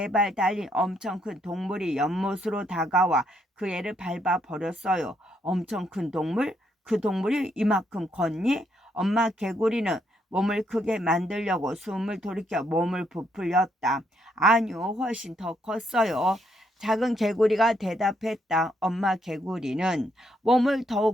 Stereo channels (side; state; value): both; normal; correlation 0.74